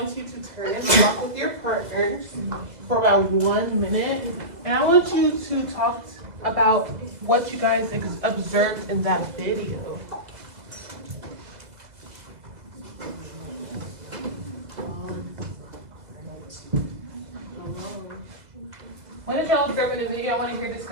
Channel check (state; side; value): late; left; 2.0 ms